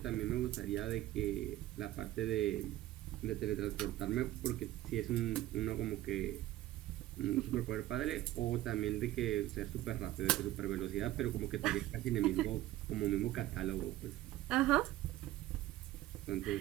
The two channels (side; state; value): left; quieter; 15.1 dB